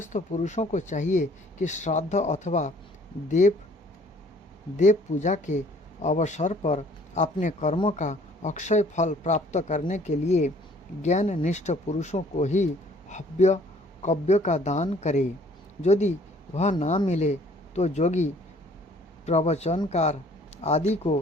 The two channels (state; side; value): normal; both; correlation 0.57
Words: पुरुषों को चाहिए कि श्राद्ध अथवा देव पूजा के अवसर पर अपने कर्मों का अक्षय फल प्राप्त करने के लिए ज्ञान निष्ठ पुरुषों को ही हव्य कव्य का दान करे। यदि वह ना मिले तो जोगी, प्रवचनकार आदि